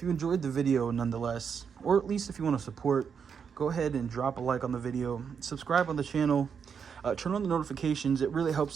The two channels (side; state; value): left; quieter; 6.7 dB